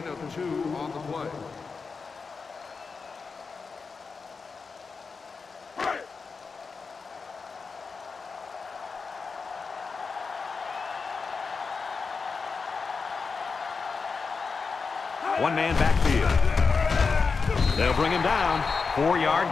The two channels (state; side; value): quieter; right; 4.8 dB